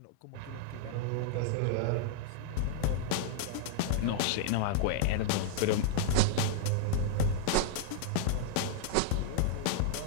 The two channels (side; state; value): both; different; correlation -0.01